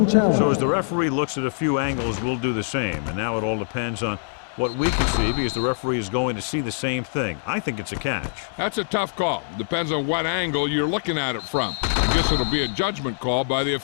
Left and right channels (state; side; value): silent; right; digital silence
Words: So as the referee looks at a few angles, we'll do the same. And now it all depends on what we can see because the referee is going to see the same thing. I think it's a catch. That's a tough call. Depends on what angle you're looking at it from. I guess it'll be a judgment call by the